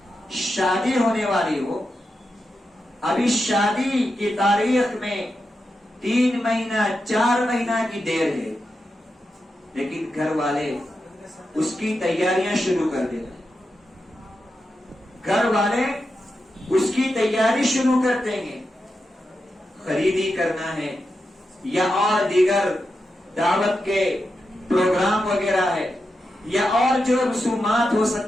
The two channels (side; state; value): both; normal; correlation 0.88